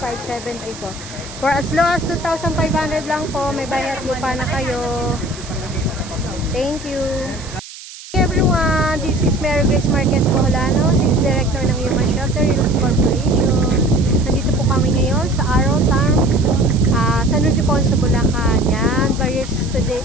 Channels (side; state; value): right; noise; hiss, 15 dB below the sound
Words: For as low as 2,500 lang po, may bayad lupa na kayo. Thank you. Hey everyone, this is Mary Grace Marquez Boholano, Sales Director ng Human Shelter Youth Corporation. Nandito po kami ngayon sa Arrow Town, San Ildefonso, Bulacan. Yan, buyers today